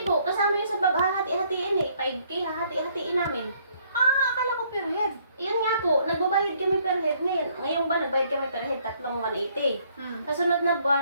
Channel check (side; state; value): both; inverted; correlation -0.66